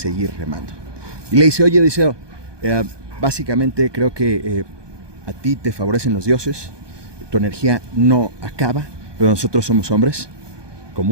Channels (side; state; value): left; late; 1.2 ms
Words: remando. Y le dice, oye Odiseo, básicamente creo que a ti te favorecen los dioses, tu energía no acaba, pero nosotros somos hombres